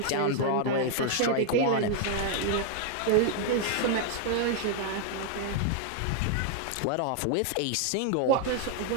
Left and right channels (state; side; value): different; both; correlation 0.00